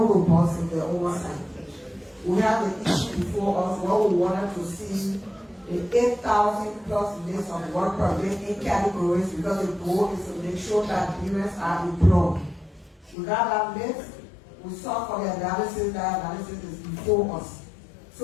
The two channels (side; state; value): right; drops out; at 13.2 s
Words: robust in the oversight. We have an issue before us where we wanted to see the 8,000 plus list of work permit in categories, because the goal is to make sure that Liberians are employed. We got that list. We saw for the analysis, that analysis is before us.